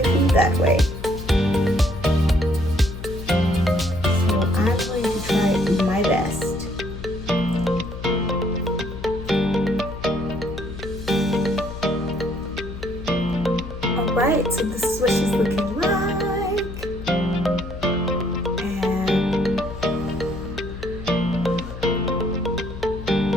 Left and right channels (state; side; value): noise; left; hum, 10 dB below the sound